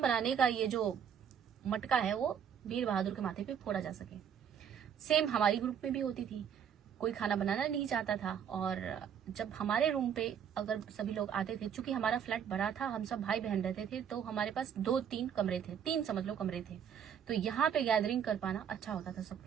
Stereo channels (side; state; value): left; quieter; 8.2 dB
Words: का ये जो मटका है वो वीर बहादुर के माथे पे फोड़ा जा सके। सेम हमारी ग्रुप में भी होती थी। कोई खाना बनाना नहीं चाहता था और जब हमारे रूम पे अगर सभी लोग आते थे, चूंकि हमारा फ्लैट बड़ा था, हम सब भाई बहन रहते थे, तो हमारे पास 2-3 कमरे थे, 3 समझ लो कमरे थे, तो यहाँ पे गैदरिंग कर पाना अच्छा होता था